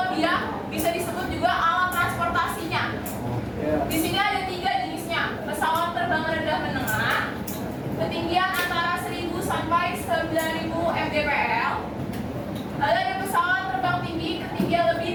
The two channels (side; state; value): both; identical; correlation 1.00